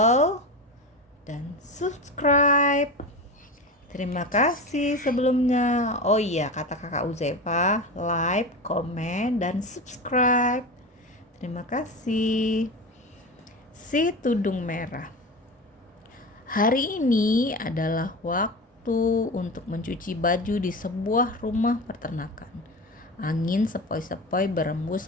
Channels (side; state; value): both; normal; correlation 0.26